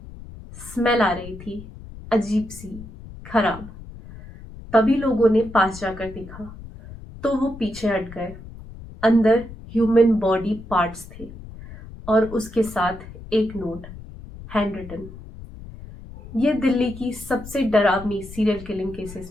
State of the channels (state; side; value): noise; left; rumble, 15 dB below the sound